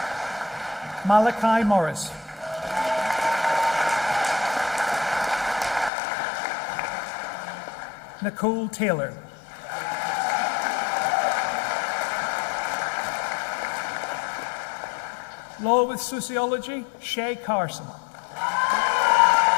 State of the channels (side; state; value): right; drops out; at 5.9 s